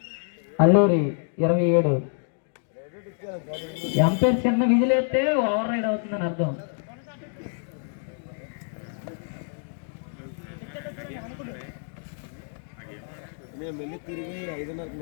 Alluri 27. ఎంపైర్ చిన్న విజిల్ వేస్తే ఓవర్ రైడ్ అవుతుందని అర్థం.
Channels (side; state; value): right; silent; 60 dB below the other